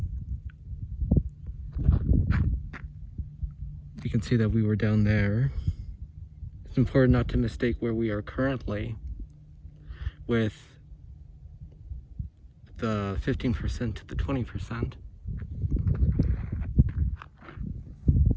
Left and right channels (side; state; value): both; identical; correlation 1.00